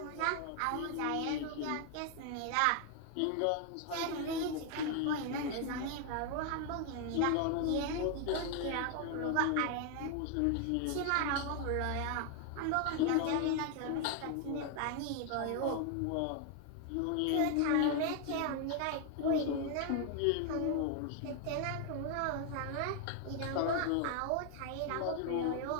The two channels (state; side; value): different; both; correlation 0.00